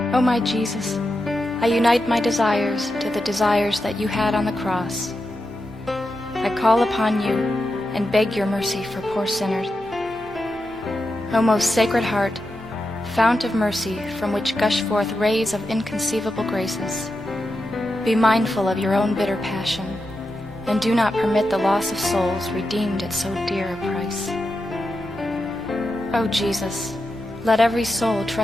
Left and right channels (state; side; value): normal; both; correlation 0.88